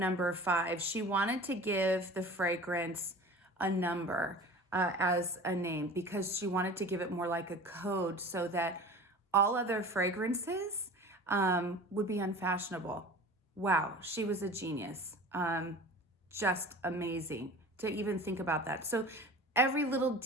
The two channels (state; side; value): normal; both; correlation 0.39